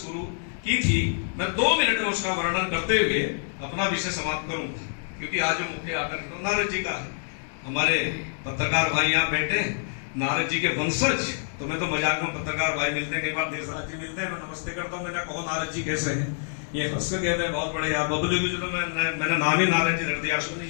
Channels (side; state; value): right; silent; digital silence